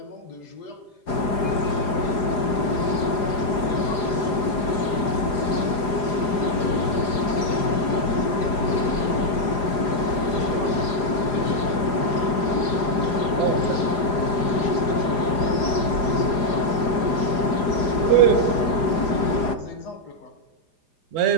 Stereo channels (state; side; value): late; right; 4.9 ms